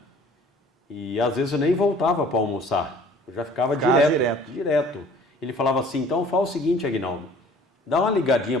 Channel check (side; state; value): both; normal; correlation 0.51